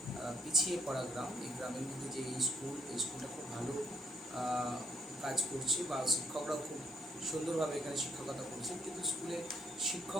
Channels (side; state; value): both; normal; correlation 0.68